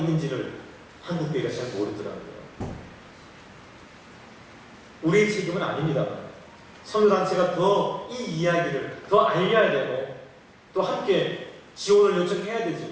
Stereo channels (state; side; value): identical; both; correlation 1.00